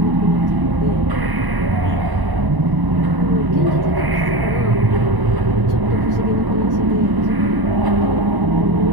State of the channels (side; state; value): left; late; 1.0 ms